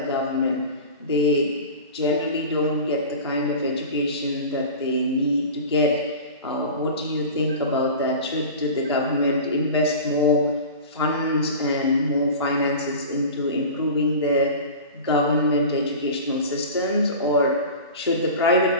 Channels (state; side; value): inverted; both; correlation -0.34